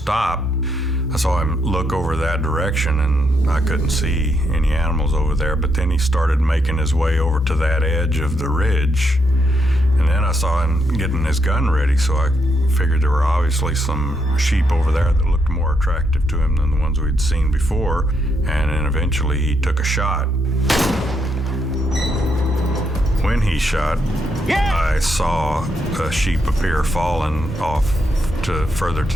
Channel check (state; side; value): normal; both; correlation 0.78